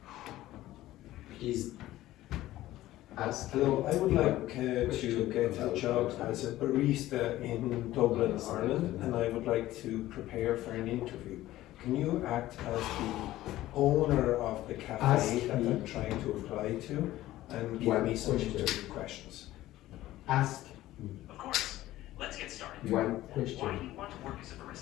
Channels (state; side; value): quieter; right; 15.4 dB